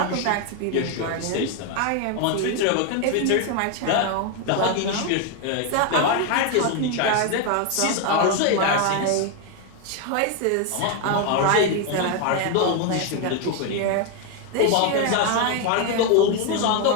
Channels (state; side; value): different; both; correlation 0.01